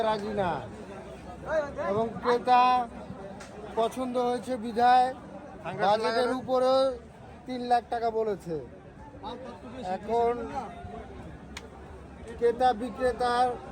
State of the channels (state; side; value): identical; both; correlation 1.00